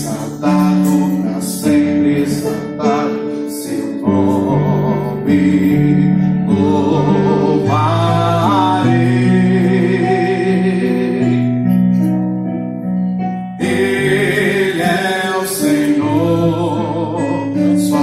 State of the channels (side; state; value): both; identical; correlation 1.00